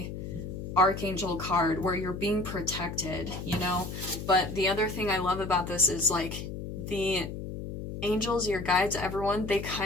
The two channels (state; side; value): noise; left; hum, 7 dB below the sound